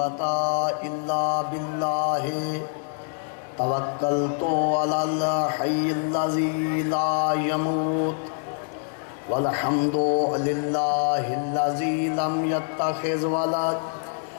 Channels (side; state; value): right; silent; 62 dB below the other